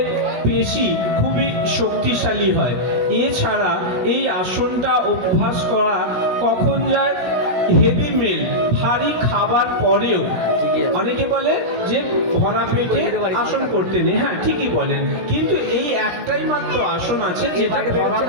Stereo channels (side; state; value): left; late; 16 ms